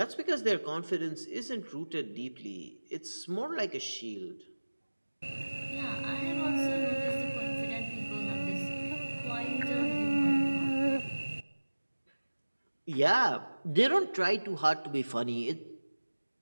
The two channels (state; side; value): inverted; both; correlation -1.00